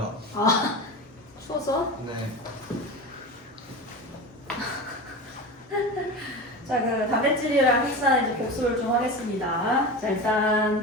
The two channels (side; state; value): both; normal; correlation 0.27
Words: 아 추워서? 네. 자, 그 단백질이랑 핵산 이제 복습을 좀 하겠습니다. 자,